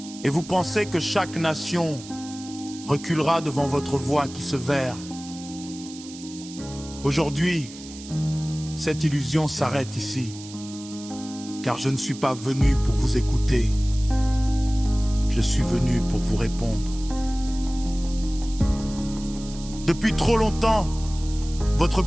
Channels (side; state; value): right; noise; hiss, 16 dB below the sound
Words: Et vous pensez que chaque nation reculera devant votre voix qui se verre. Aujourd'hui, cette illusion s'arrête ici. Car je ne suis pas venu pour vous écouter. Je suis venu pour vous répondre. Depuis trop longtemps, votre